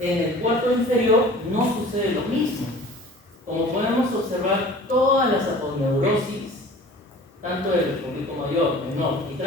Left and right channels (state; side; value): normal; both; correlation 0.44